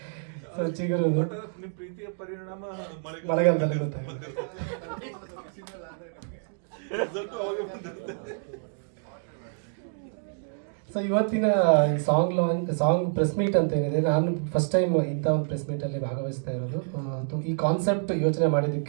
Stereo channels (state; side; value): silent; left; digital silence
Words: ಸೊ ಚಿಗುರು ಪ್ರೀತಿಯ ಪರಿಣಾಮ ಮಳೆಗಾಲದಲ್ಲಿ ಗೊತ್ತಾಗುತ್ತೆ. ಸೊ ಇವತ್ತಿನ ಈ ಸಾಂಗ್ ಪ್ರೆಸ್ ಮೀಟ್ ಅಂತ ಏನಿದೆ, ನಾನು ಫಸ್ಟ್ ಟೈಮ್ ಇಂಥ ಒಂದು ಪ್ರೆಸ್ ಮೀಟಲ್ಲಿ ಭಾಗವಹಿಸ್ತಾ ಇರೋದು. ಈ ಕಾನ್ಸೆಪ್ಟ್ ಯೋಚನೆ